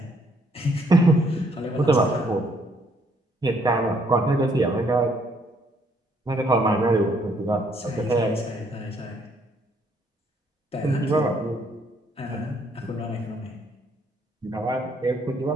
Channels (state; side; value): normal; both; correlation 0.67